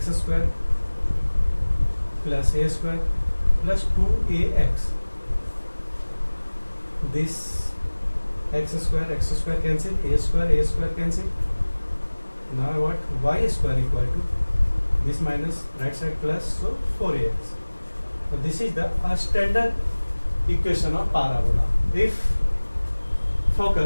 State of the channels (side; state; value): both; inverted; correlation -1.00